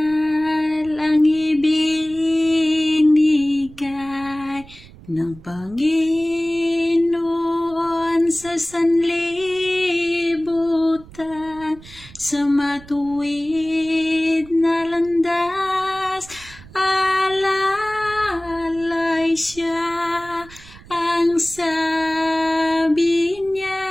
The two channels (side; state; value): right; noise; rumble, 20 dB below the sound